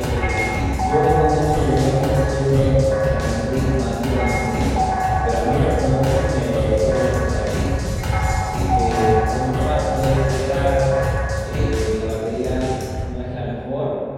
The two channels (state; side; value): identical; both; correlation 1.00